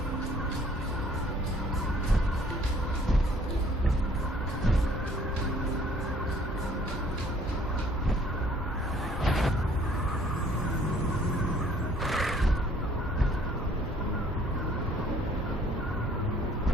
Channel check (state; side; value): normal; both; correlation 0.59